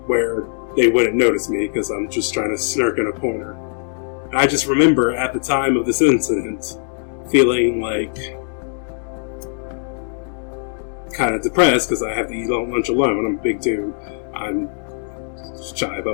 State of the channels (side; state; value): right; silent; digital silence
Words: where they wouldn't notice me because I'm just trying to snark in a corner. I just remember at the time of this incident feeling like kind of depressed because I have to eat lunch alone. I'm a big dude. I'm shy